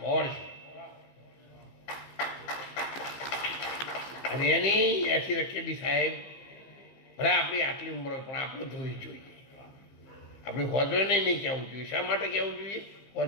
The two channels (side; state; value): right; late; 15 ms